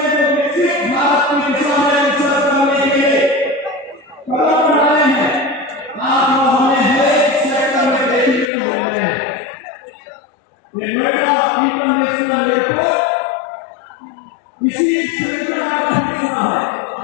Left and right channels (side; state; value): right; drops out; at 8.5 s